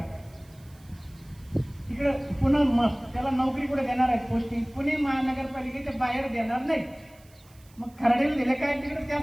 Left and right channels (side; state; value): right; noise; hiss, 28 dB below the sound